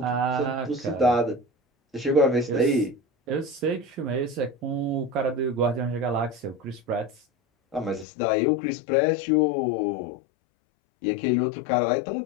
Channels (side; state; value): right; drops out; at 8.1 s